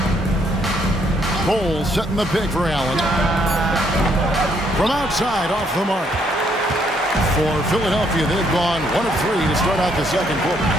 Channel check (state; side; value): normal; both; correlation 0.70